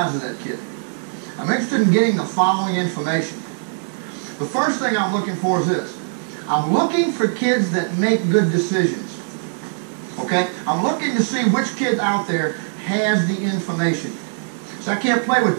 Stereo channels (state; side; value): silent; left; digital silence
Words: of that kid. I'm interested in getting the following information. The first thing I'm looking for is this. I'm looking for kids that make good decisions. Okay? I'm looking to see which kid out there has the information. So I can't play